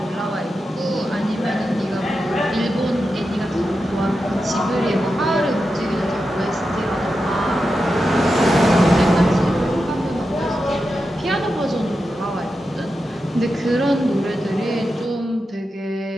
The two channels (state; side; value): normal; both; correlation 0.89